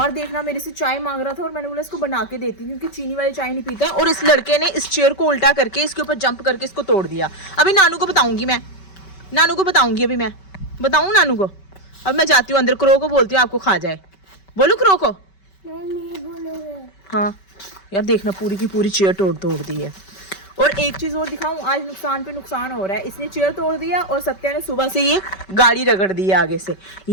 देखना, मेरे से चाय मांग रहा था और मैंने बोला इसको बना के देती, क्योंकि चीनी वाली चाय नहीं पीता। और इस लड़के ने इस चेयर को उल्टा करके इसके ऊपर जंप करके इसको तोड़ दिया। अभी नानू को बताऊंगी मैं, नानू को बताऊंगी। अभी मैं बताऊं नानू को? अब मैं जाती हूँ अंदर, क्रो को बोलती हूँ आपको खा जाए। बोलू क्रो को? नहीं बोलोगे। हाँ यार देखना, पूरी की पूरी चेयर तोड़ दी है। और एक चीज़ और दिखाऊं, आज नुकसान पे नुकसान हो रहा है। इसने चेयर तोड़ दिया और सत्या ने सुबह से ये गाड़ी रगड़ दी है आगे से,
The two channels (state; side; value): late; right; 5.2 ms